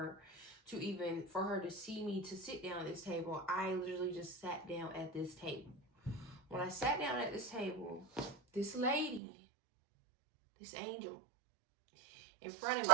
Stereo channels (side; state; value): left; drops out; at 9.2 s